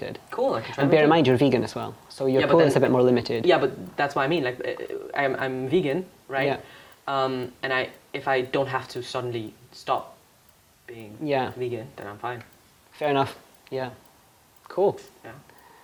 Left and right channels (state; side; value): identical; both; correlation 1.00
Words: Cool, I can try And them bear in too. mind, you're vegan as well. So your Yeah, but pool is then- a bit more limited. Yeah, but that's what I mean. Like, I'm vegan, right? Yeah. And if I don't have to suddenly stop being vegan, then I'm fine. Fair enough. Yeah. Cool. Yeah.